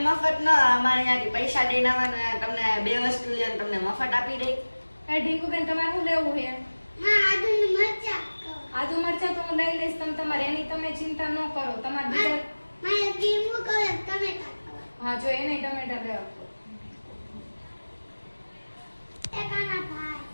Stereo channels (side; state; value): both; inverted; correlation -1.00